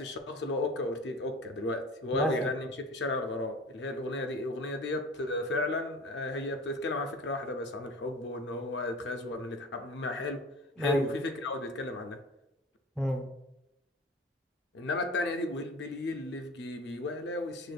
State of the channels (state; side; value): normal; both; correlation 0.38